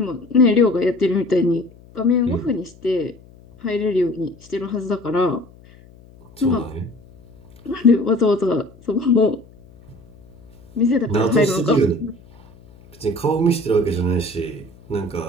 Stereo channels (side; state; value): left; noise; hum, 25 dB below the sound